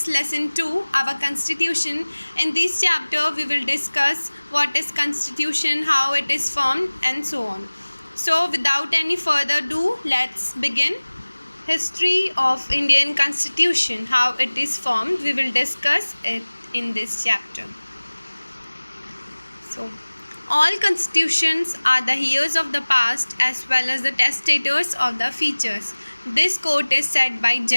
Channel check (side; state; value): both; inverted; correlation -1.00